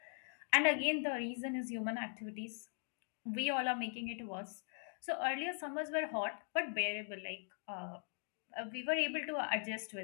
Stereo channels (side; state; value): right; silent; 51 dB below the other